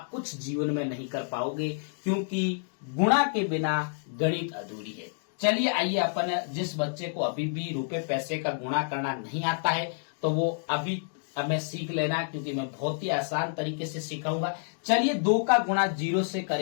कुछ जीवन में नहीं कर पाओगे, क्योंकि गुणा के बिना गणित अधूरी है। चलिए आइए, अपन जिस बच्चे को अभी भी रुपए पैसे का गुणा करना नहीं आता है तो वो अभी हमें सीख लेना, क्योंकि मैं बहुत ही आसान तरीके से सिखाऊंगा। चलिए 2 का गुणा 0 से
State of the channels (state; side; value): silent; right; digital silence